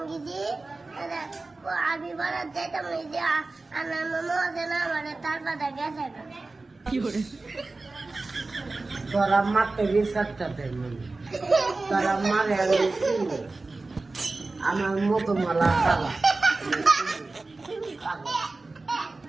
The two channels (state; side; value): quieter; left; 3.4 dB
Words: গিয়েছি আমি বাড়ার যাইতাম আমার মজা না মানে তার পাতা গেছে তোরা মারতে বিচারটা দেন তোরা মারে আমি চিনি আমার মতো মালা কালা